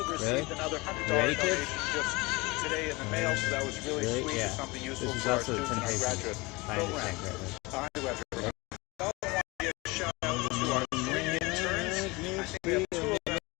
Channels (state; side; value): quieter; right; 24.0 dB